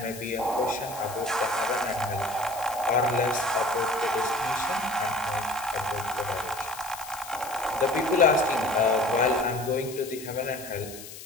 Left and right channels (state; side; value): noise; left; hiss, 14 dB below the sound